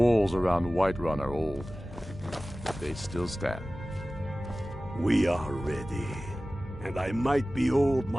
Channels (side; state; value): both; normal; correlation 0.97